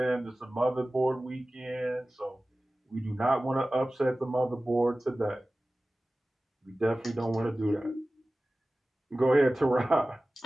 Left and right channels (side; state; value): both; normal; correlation 0.97